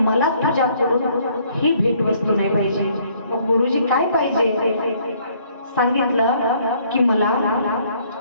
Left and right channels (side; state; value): both; inverted; correlation -0.63